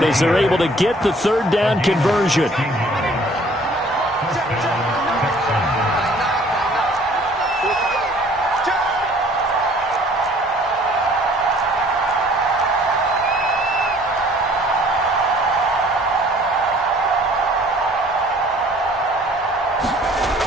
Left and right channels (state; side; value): normal; both; correlation 0.55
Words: as they're able to get the third down conversion.